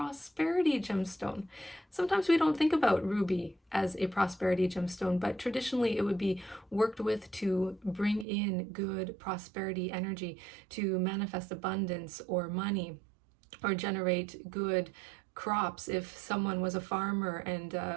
gemstone. Sometimes we don't think about ruby as a prosperity gemstone, but traditionally it would be worked with to bring in good prosperity energy, to manifest abundance or money, or generate good crops. If someone was a farmer and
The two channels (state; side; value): drops out; left; at 8.2 s